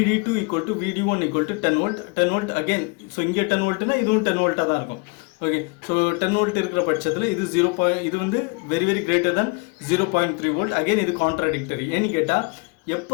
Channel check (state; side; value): quieter; right; 29.7 dB